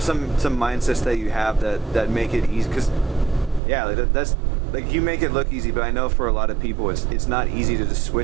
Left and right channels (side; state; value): left; drops out; at 3.6 s